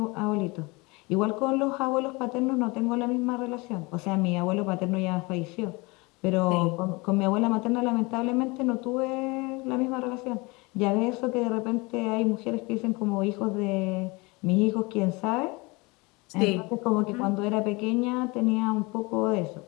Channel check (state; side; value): quieter; right; 25.7 dB